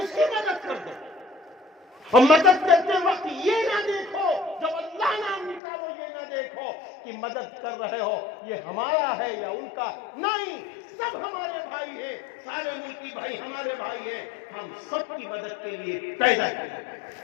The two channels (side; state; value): right; drops out; at 5.6 s